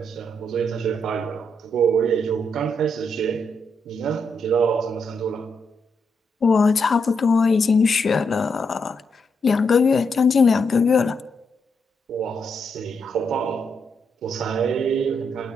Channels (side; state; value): both; normal; correlation 0.80